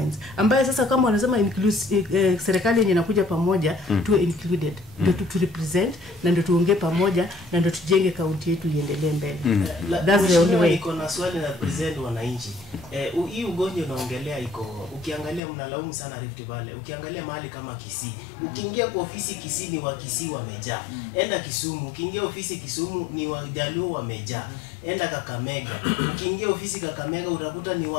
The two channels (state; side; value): drops out; right; at 15.4 s